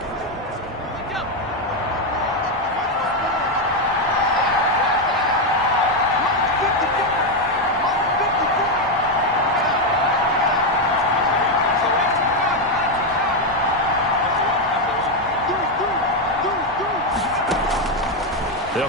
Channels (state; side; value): normal; both; correlation 0.05